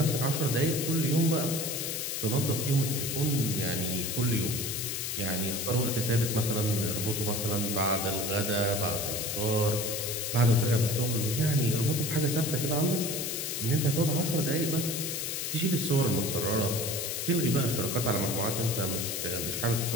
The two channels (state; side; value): noise; left; hiss, 3 dB below the sound